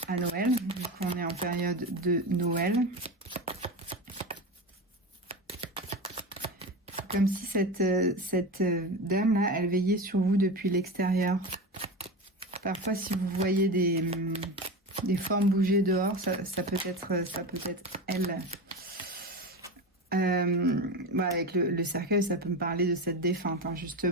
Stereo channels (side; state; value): both; normal; correlation 0.24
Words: à Noël, vu qu'on est en période de Noël. Comme si cette dame-là, elle veillait sur vous depuis l'extérieur. Parfois, si vous voyez des formes bouger dehors, ça peut être elle. Avec le cercueil, ça peut me parler de cette défunte, hein,